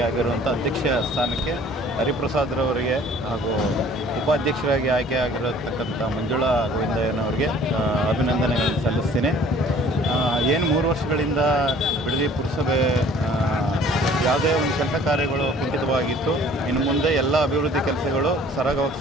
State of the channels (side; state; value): both; normal; correlation 0.53